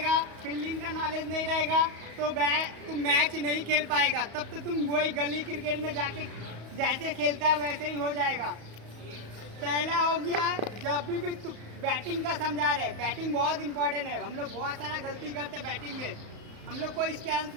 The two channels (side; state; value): left; late; 34 ms